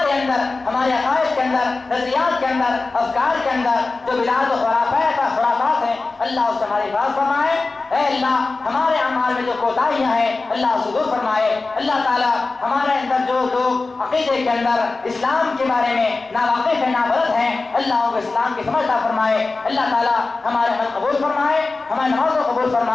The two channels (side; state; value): right; quieter; 3.6 dB